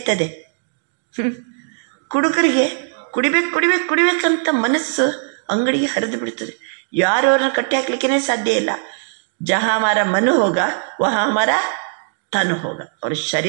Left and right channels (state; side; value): silent; left; digital silence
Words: ಕುಡುಕರಿಗೆ ಕುಡಿಬೇಕಂತ ಮನಸ್ಸು ಅಂಗಡಿಗೆ ಹರಿದು ಬಿಡ್ತದೆ. ಯಾರು ಅವ್ರನ್ನ ಕಟ್ಟಿ ಹಾಕ್ಲಿಕ್ಕೇ ಸಾಧ್ಯ ಇಲ್ಲ. ಜಹ ಹಮಾರ ಮನ ಹೋಗ ವಹ ಹಮಾರ ತನ್ ಹೋಗ. ಅವ್ರ